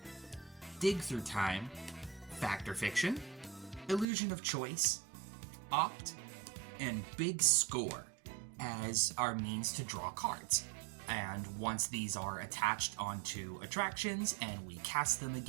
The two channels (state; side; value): drops out; left; at 4.0 s